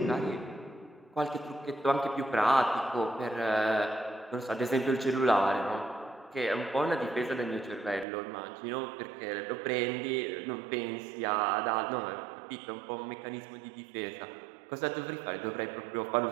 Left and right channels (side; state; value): left; drops out; at 8.1 s